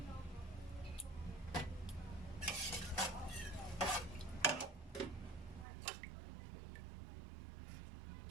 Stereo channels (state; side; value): drops out; left; at 5.7 s